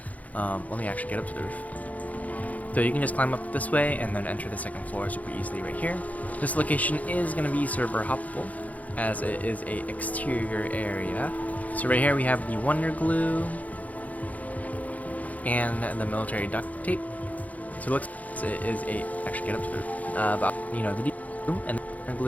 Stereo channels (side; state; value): right; late; 0.073 ms